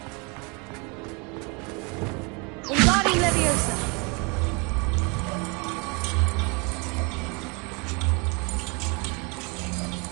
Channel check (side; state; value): left; quieter; 30.8 dB